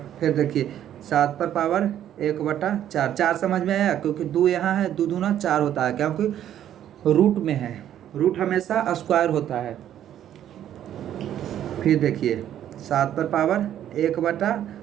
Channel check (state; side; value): quieter; left; 10.9 dB